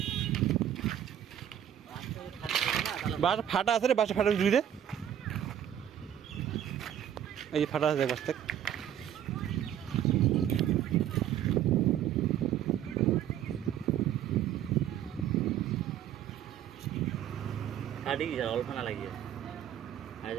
বাস ফাটা আছে রে, বাসা ফাটা জুড়ি দে। এই যে ফাটা আছে দেখ, বাস দেখ। অল্প না লাগিয়ে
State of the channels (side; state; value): left; quieter; 10.3 dB